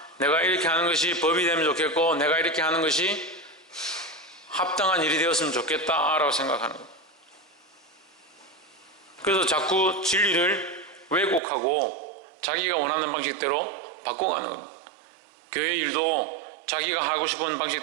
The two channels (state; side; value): drops out; left; at 11.4 s